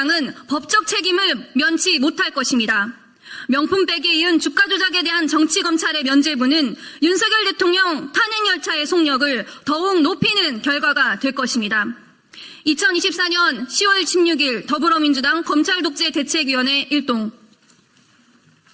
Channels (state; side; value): identical; both; correlation 1.00